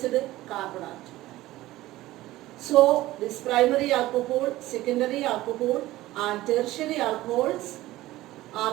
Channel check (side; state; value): left; quieter; 16.7 dB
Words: carbon atom. So this primary alcohol, secondary alcohol and tertiary alcohols